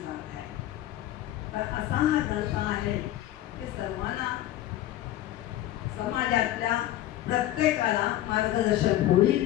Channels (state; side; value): quieter; right; 13.9 dB